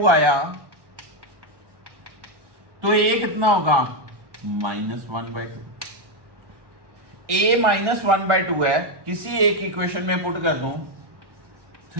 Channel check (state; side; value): late; left; 1.1 ms